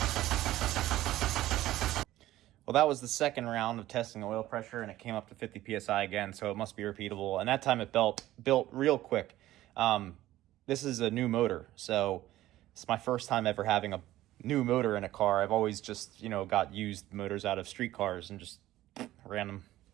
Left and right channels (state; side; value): quieter; left; 15.0 dB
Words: Well, that was the second round of testing the oil pressure, and it came up to 50 PSI again, so it must be repeatable. And that time it built real quick. This is a new motor, so it's my first time ever having a new motor in a car. I've always just, got used motors out of street cars and just ran